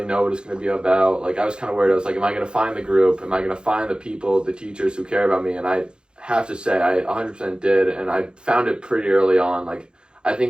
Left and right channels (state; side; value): late; left; 0.050 ms